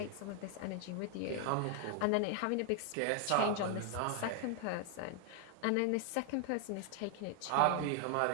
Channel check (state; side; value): different; both; correlation 0.00